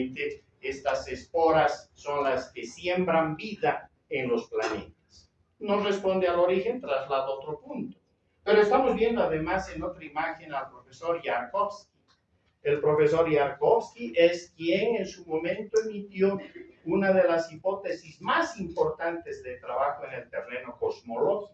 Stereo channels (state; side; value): identical; both; correlation 1.00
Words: estas esporas son las que siembran vida en los planetas. Nos responde al origen, traslado a otro punto. Pero estamos viendo además en otra imagen al profesor Yarkovsky. El profesor Yarkovsky es quien en su momento emitió una de las hipótesis más importantes de trabajo en el terreno